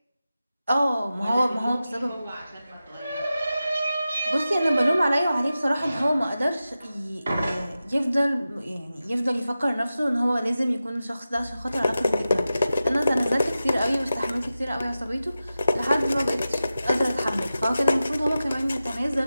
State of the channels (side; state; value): both; inverted; correlation -0.93